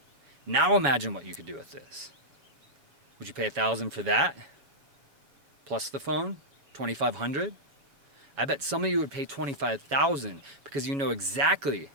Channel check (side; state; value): left; late; 7.1 ms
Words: Now imagine what you could do with this. Would you pay $1,000 for that? Plus the phone? $2,500? I bet some of you would pay $25,000 because you know exactly